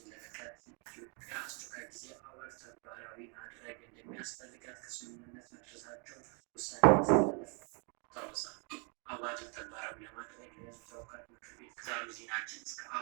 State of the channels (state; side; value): quieter; left; 35.8 dB